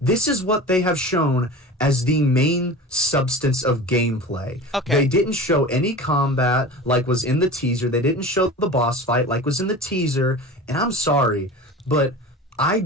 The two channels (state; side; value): normal; both; correlation 0.34